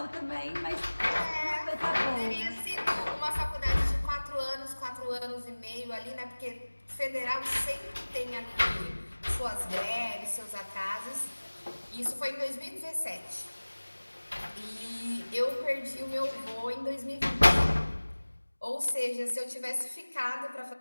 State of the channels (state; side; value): inverted; both; correlation -1.00